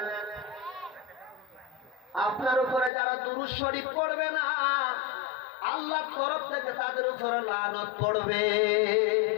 আপনার উপরে যারা দুরূদ শরীফ পড়বে না, আল্লাহর তরফ থেকে তাদের উপরে লানত পড়বে।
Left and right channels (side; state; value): right; drops out; at 2.9 s